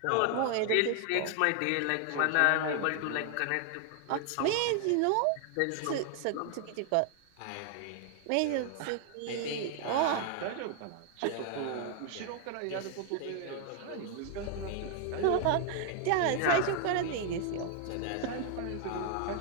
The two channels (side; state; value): both; different; correlation 0.00